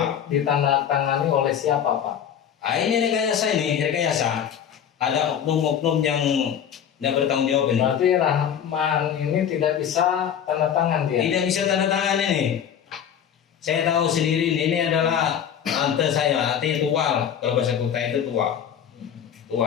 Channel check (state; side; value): quieter; right; 8.8 dB